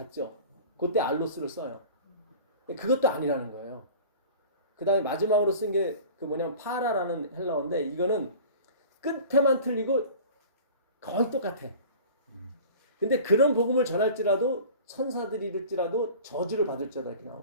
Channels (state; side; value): inverted; both; correlation -0.40